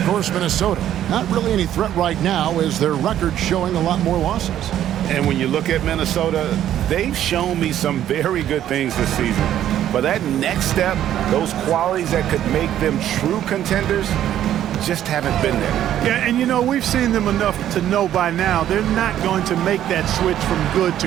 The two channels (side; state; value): left; quieter; 11.4 dB